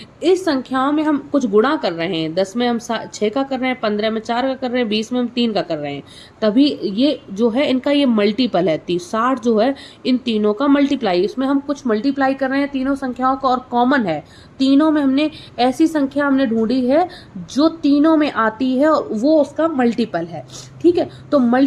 इस संख्याओं में हम कुछ गुणा कर रहे हैं, 10 में हम 6 का कर रहे हैं, 15 में 4 का कर रहे हैं, 20 में हम 3 का कर रहे हैं, तभी ये जो है इनका ये मल्टीपल है। 60 जो है इन तीनों का मल्टीप्लाई, इसमें हम कुछ मल्टीप्लाई कर रहे हैं तीनों संख्याओं का, और कॉमन है तीनों में। हमने ऐसी संख्या हमने ढूंढी है जो तीनों में आती है और वो उसका मल्टीपल है। ठीक है, तो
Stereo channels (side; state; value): both; identical; correlation 1.00